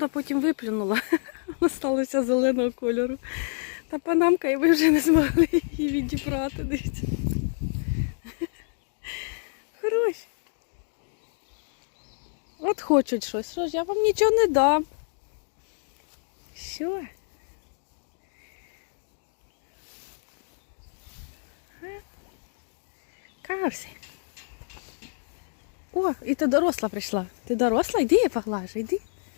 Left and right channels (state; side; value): silent; right; digital silence